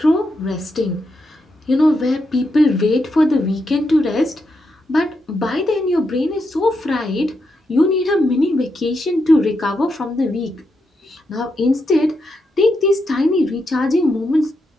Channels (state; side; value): normal; both; correlation 0.83